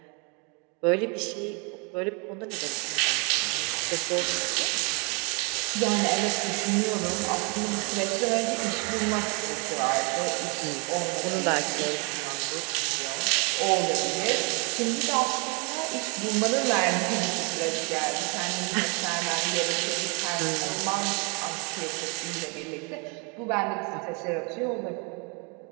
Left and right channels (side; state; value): left; quieter; 33.3 dB